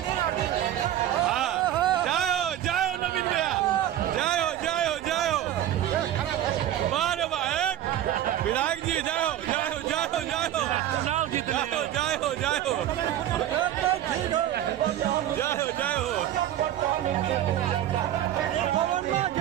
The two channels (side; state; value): left; quieter; 12.1 dB